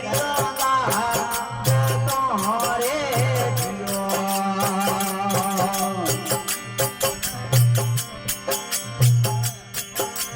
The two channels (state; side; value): identical; both; correlation 1.00